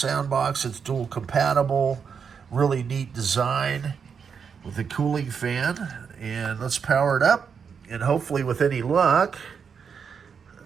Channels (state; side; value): quieter; left; 6.5 dB